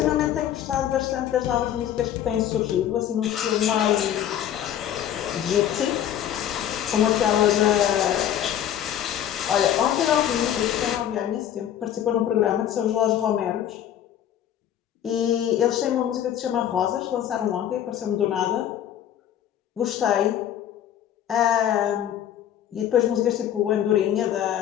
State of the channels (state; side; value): quieter; right; 10.7 dB